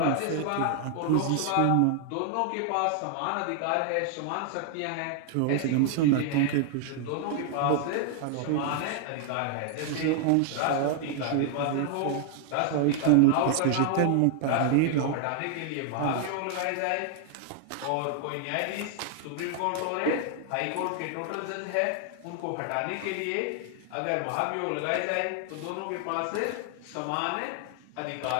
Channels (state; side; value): different; both; correlation 0.00